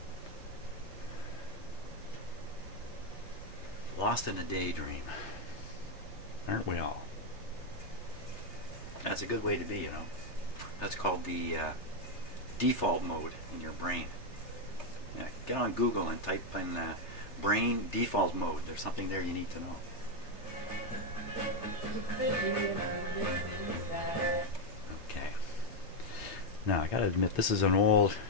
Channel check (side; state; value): right; late; 3.3 ms